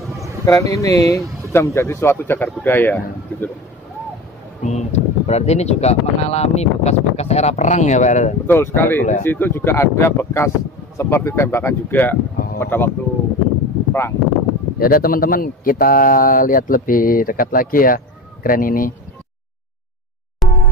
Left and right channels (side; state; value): both; normal; correlation 0.31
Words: kren ini sudah menjadi suatu cagar budaya, gitu loh. Berarti ini juga mengalami bekas-bekas era perang ya, Pak? Betul sekali. Di situ juga ada bekas seperti tembakan juga pada waktu perang. Ya udah, teman-teman, kita lihat lebih dekat lagi ya kren ini.